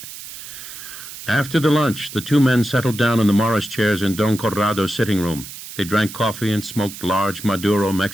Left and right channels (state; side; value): noise; right; hiss, 13 dB below the sound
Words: After the lunch, the 2 men settled down in the Morris chairs in Don Corrado's sitting room. They drank coffee and smoked large Maduro